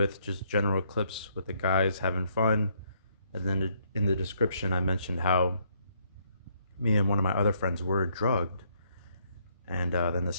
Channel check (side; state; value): both; inverted; correlation -0.70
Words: just general clips with the guys having fun, and then in the description I mentioned how me and one of my other friends were drugged. And then the